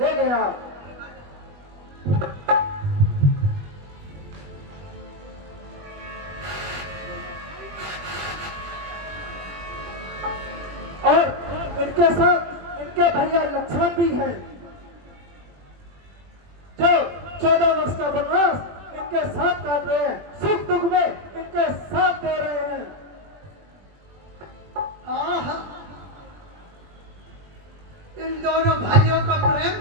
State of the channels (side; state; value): left; late; 21 ms